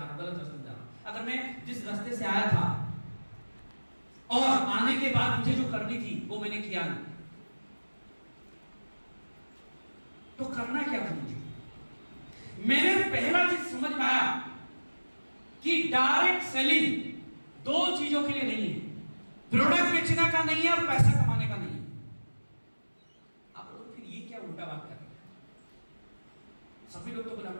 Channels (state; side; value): inverted; both; correlation -1.00